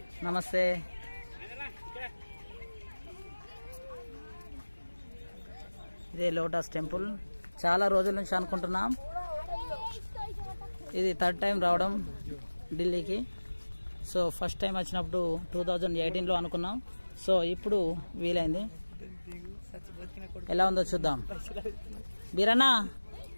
నమస్తే. ఇదే లోటస్ టెంపుల్. చాలా రోజుల నుంచి అనుకుంటున్నాం. ఇది థర్డ్ టైం రావడం ఢిల్లీకి. సో ఫస్ట్ టైం వచ్చినప్పుడు 2018లో అనుకున్నాం. సో ఇప్పుడు వీలైంది. ఎలా ఉందో చూద్దాం. బీరన్నా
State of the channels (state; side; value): inverted; both; correlation -1.00